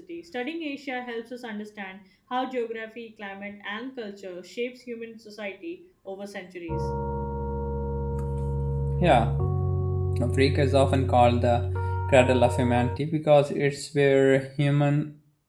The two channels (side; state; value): both; identical; correlation 1.00